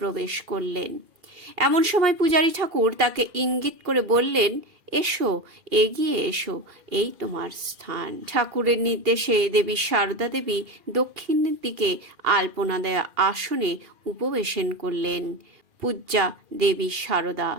করলেন। এমন সময় পূজারী ঠাকুর তাকে ইঙ্গিত করে বললেন, এসো, এগিয়ে এসো, এই তোমার স্থান। ঠাকুরের নির্দেশে দেবী শারদা দেবী দক্ষিণের দিকে আলপনা দেয়া আসনে উপবেশন করলেন। পূজ্যা দেবী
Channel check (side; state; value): left; late; 2.4 ms